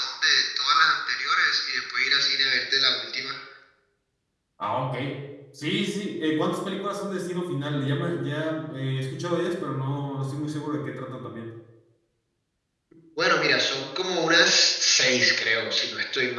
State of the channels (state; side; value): identical; both; correlation 1.00